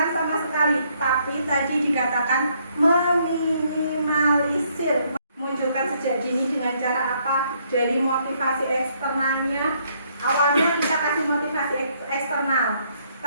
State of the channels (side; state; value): both; inverted; correlation -0.69